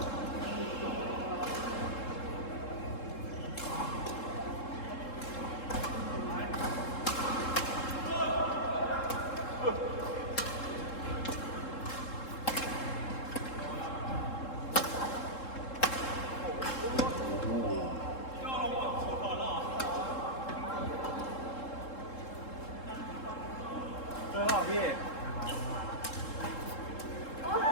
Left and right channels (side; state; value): right; late; 3.7 ms